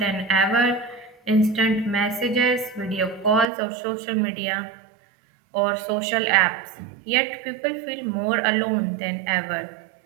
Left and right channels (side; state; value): left; drops out; at 3.5 s